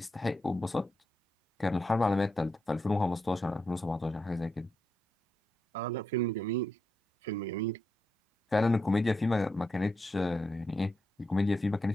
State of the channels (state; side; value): normal; both; correlation 0.84